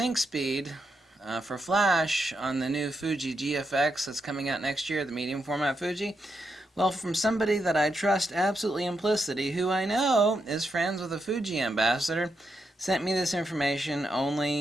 speed for flash on the new Fuji GFX that's coming out next year, the medium format Fuji. Well, from somebody that I trust absolutely implicitly, who I know is friends with a Fuji ambassador, sent me this information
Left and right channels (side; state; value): both; normal; correlation 0.83